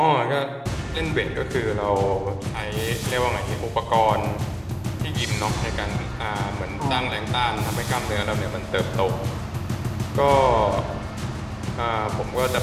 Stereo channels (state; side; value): identical; both; correlation 1.00